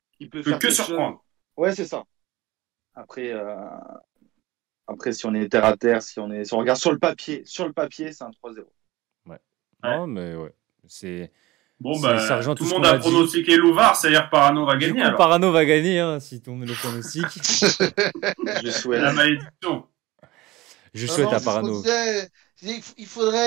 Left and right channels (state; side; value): quieter; left; 19.2 dB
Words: Il peut faire que surprendre. Ouais, c'est ça. Après, si on est terre à terre, si on regarde sur le papier, c'est un 3-0. Ouais. Non, mais ouais. C'est. Bon, ça rejoint tout le monde a pronostiqué Louvard, c'est-à-dire Parano va gagner. Du coup, Parano va gagner, hein, si tu met le pronostic. Je souhaite. La malédiction. Je souhaite à Parano. Il